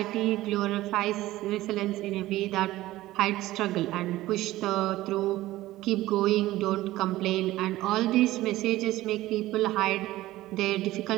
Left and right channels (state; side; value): quieter; left; 16.5 dB